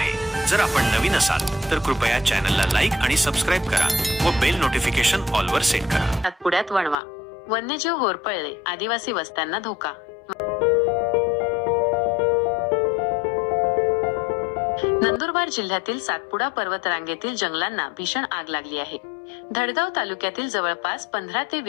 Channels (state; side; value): drops out; right; at 7.0 s